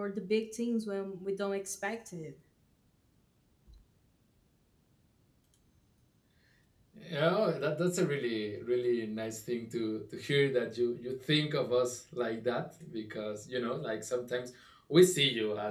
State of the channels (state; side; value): identical; both; correlation 1.00